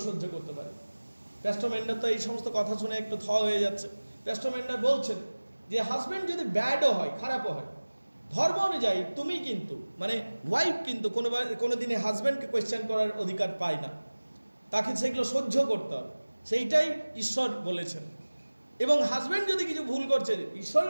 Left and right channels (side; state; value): both; inverted; correlation -1.00